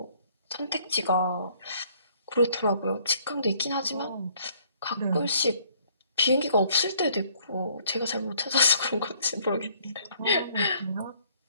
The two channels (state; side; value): inverted; both; correlation -0.61